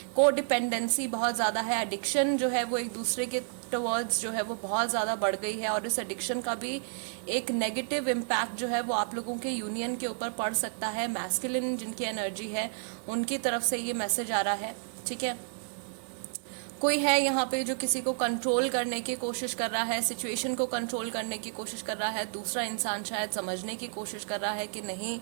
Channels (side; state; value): left; silent; digital silence